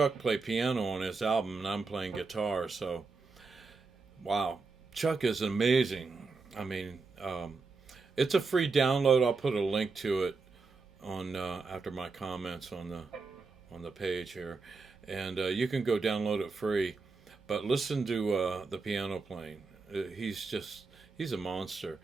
play piano on his album, and I'm playing guitar. So, wow, Chuck is amazing. I mean, it's a free download. I'll put a link to it on after my comments on the page here, and you can go download it free. But listen to the piano playing. He's a monster.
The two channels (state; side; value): quieter; left; 4.2 dB